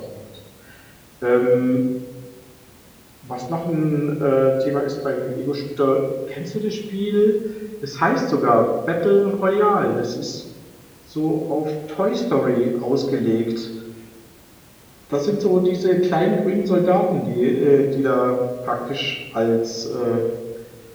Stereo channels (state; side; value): identical; both; correlation 1.00